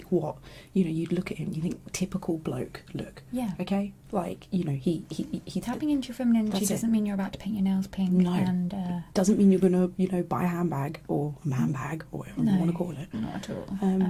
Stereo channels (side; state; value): both; identical; correlation 1.00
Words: what, you know, you'd look at him, you think typical bloke look, Yeah. okay? Like, you know, he Tapping into your feminine energy That's it. doesn't mean you're about to paint your nails pink. No. And doesn't mean you're gonna, you know, buy a handbag or a man bag or whatever you No. want to call it. not at all.